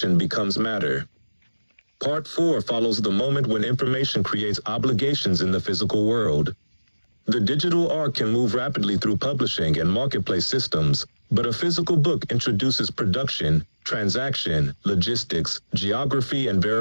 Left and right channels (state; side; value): inverted; both; correlation -1.00